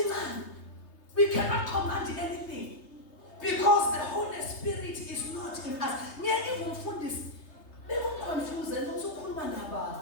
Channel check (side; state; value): right; late; 3.3 ms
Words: we cannot command anything because the Holy Spirit is not in us.